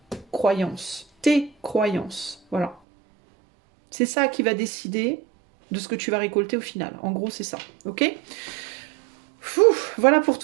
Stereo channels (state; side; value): drops out; left; at 2.8 s